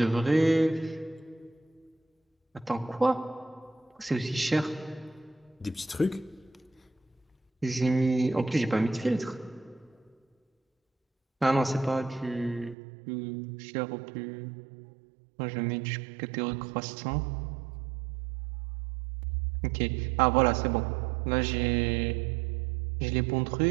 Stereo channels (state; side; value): drops out; left; at 12.8 s